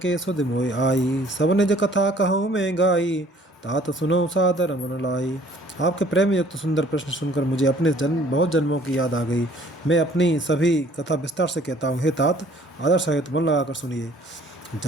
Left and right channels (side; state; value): both; normal; correlation 0.56